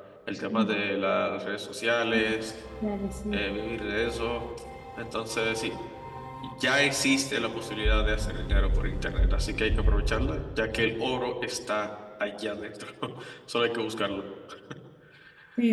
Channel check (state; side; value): identical; both; correlation 1.00